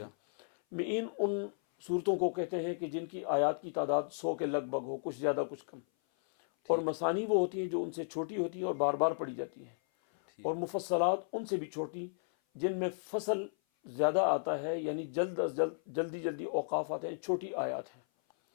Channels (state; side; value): silent; right; 55 dB below the other